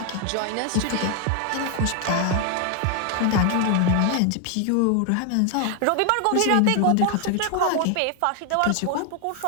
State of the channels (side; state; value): both; different; correlation 0.00